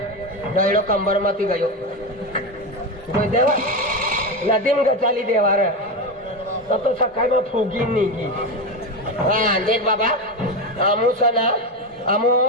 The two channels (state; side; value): normal; both; correlation 0.16